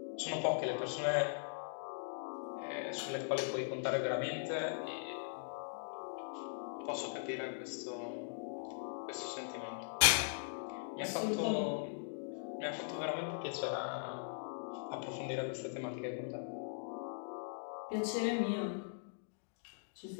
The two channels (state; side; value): silent; right; digital silence